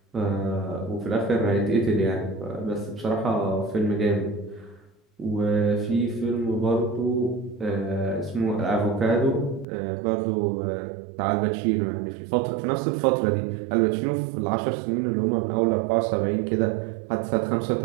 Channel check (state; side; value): drops out; left; at 9.7 s